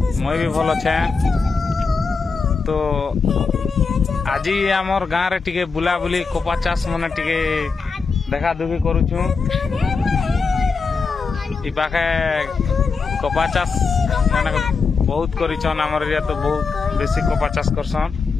मैं भी भल अच्छे। तो आज आमर गाँव रे टिके बुला बुली कपा चाष मने टिके देखा दुखी करूछु। इ पाखे कपा चाष माने बहुत करिछन, आमर एरिया तो बहुत बेसी कपा चाष करसन।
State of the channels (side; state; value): right; quieter; 4.8 dB